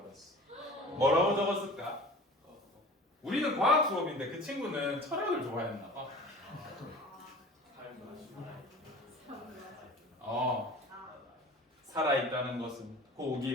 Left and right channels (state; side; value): normal; both; correlation 0.41